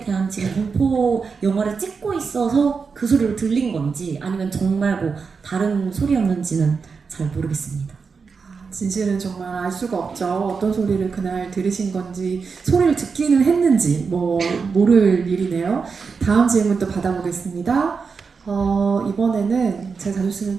대한 지금 공포 영화를 찍고 있어서 그 소리로 들린 건지 아니면 정말 뭐 다른 소리였는지는 잘 모르겠습니다. 진실은 정말 알 수가 없죠. 어떤 소리를 그날 들으신 건지, 소리를 듣기는 했는지 뭐 모를 일이네요. 다음 질문 또 받아보겠습니다. 이번에는 제가 자주 쓰는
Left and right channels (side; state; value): left; quieter; 5.2 dB